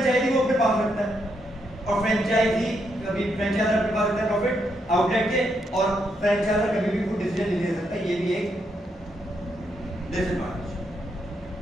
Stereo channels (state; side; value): normal; both; correlation 0.79